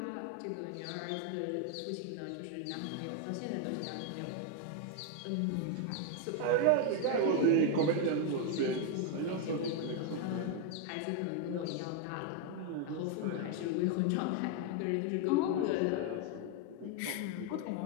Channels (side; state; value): both; different; correlation 0.01